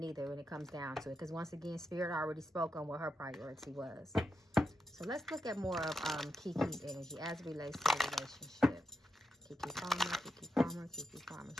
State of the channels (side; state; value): both; normal; correlation 0.86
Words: either when it comes down to it. Because once again, Spirit already spoke on what her priority was. So let's look at more of Kiki's energy as it relates to the relationship. Kiki Palmer, Kiki Palmer, Kiki Palmer.